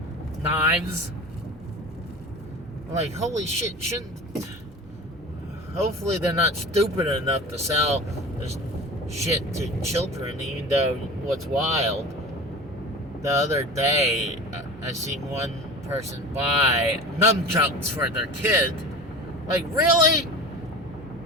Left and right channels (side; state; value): both; normal; correlation 0.34